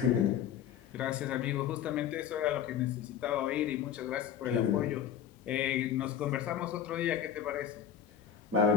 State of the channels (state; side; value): quieter; right; 8.9 dB